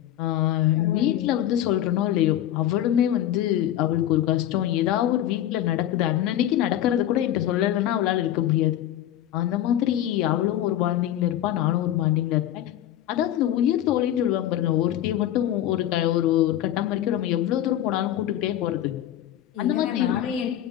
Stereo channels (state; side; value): quieter; right; 12.1 dB